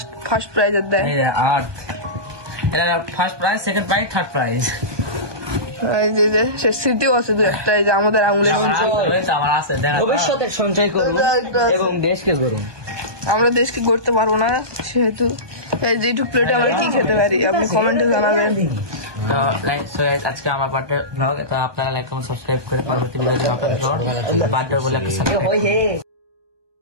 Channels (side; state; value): left; late; 1.2 ms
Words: ফার্স্ট প্রাইজ দেয় আর এটা first prize second prize third prize এই যে সে স্মৃতিও আছে দু একটা এই যে আমাদের আঙুলের আমার আছে ভবিষ্যতের সঞ্চয় করব এবং দেশকে গড়ব আমরা দেশকে গড়তে পারবো না সেহেতু এই যে এইটুক প্লেটে আমরা কি খেতে পারি আপনি কমেন্টে জানাবেন তো লাইক সো আজকে আমার বার্থডে ব্লগ তো আপনারা লাইক কমেন্ট সাবস্ক্রাইব করে পরবর্তী ভিডিও আপনাদের বার্থডে বলে একটা